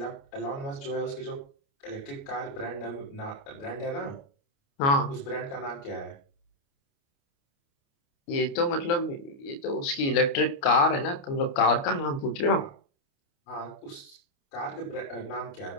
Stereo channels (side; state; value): right; late; 29 ms